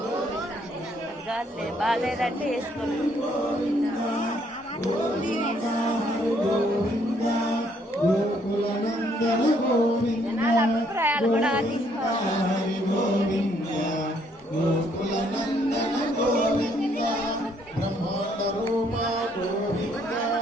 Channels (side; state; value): both; normal; correlation 0.68